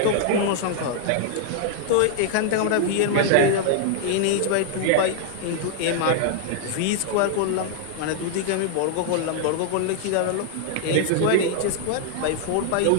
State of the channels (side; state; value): both; different; correlation -0.01